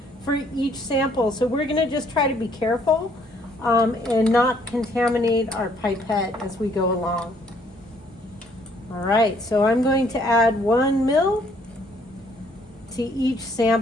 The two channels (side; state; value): both; normal; correlation 0.64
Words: for each sample. So we're going to just try to be careful and not contaminate our pipette as we go along. All right, so I'm going to add 1 ml to each